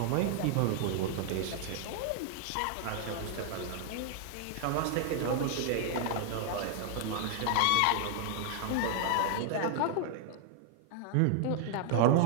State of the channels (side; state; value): both; different; correlation 0.00